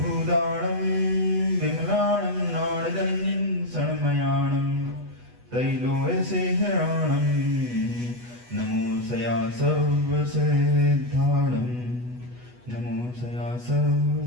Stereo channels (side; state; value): left; late; 8.2 ms